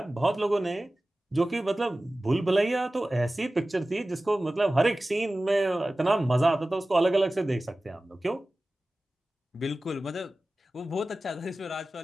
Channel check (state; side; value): normal; both; correlation 0.96